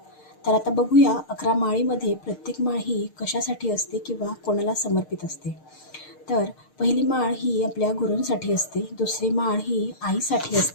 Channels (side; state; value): right; late; 6.5 ms